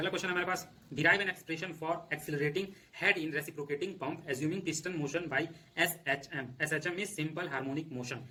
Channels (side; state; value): both; identical; correlation 1.00